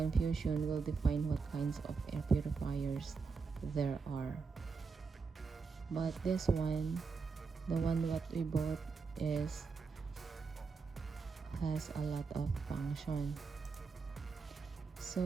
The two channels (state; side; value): quieter; left; 4.8 dB